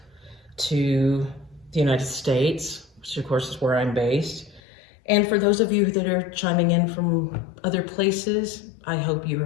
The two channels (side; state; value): right; drops out; at 4.6 s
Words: to the United States, which of course is where I'm based. And for those of you that are chiming in from other places, I hope you